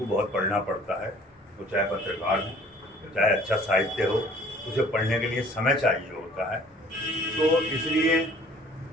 बहुत पढ़ना पड़ता है। तो चाहे पत्रकार हो, चाहे अच्छा साहित्य हो, उसे पढ़ने के लिए समय चाहिए होता है। तो इसलिए,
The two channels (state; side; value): normal; both; correlation 0.53